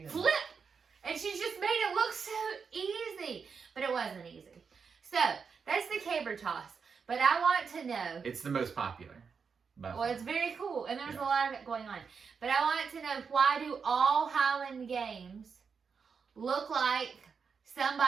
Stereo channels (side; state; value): left; quieter; 5.8 dB